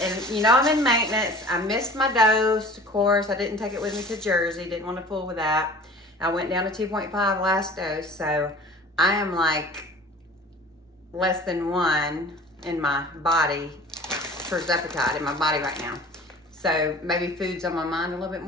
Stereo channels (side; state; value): both; normal; correlation 0.43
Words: and you know I'm in maintenance. I missed my dose, of course. I didn't take it with me to Jersey. Didn't want to fool with that. I went down to 2.5 last dose, so I am like less than 1 in my body for Zepbound in my body right now. So maybe food's on my mind a little bit